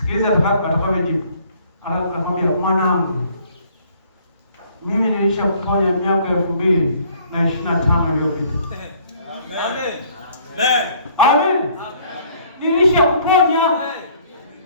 atakapojibu. Anakwambia, mwanangu, mimi nilishakuponya miaka 2025 iliyopita. Amen. Amen. Amen. Nilishakuponya.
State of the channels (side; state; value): both; inverted; correlation -0.59